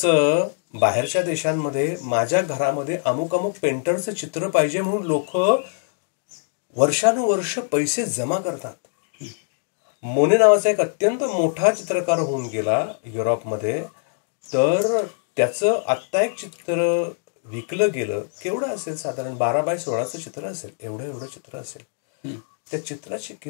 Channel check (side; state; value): right; silent; digital silence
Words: बाहेरच्या देशांमध्ये माझ्या घरामध्ये अमुक अमुक पेंटरचं चित्र पाहिजे म्हणून लोक वर्षानुवर्ष पैसे जमा करतात. मोने नावाचा एक अत्यंत मोठा चित्रकार होऊन गेला युरोपमध्ये, तर त्याचं आत्ता एक चित्र विकलं गेलं. केवढं असेल, साधारण 12x16चं चित्र असेल, एवढं चित्र असेल. त्या चित्राची